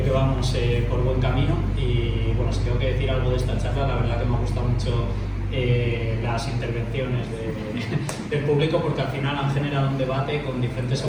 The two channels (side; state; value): both; identical; correlation 1.00